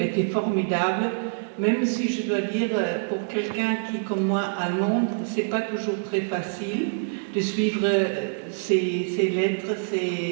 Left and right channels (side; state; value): left; silent; 61 dB below the other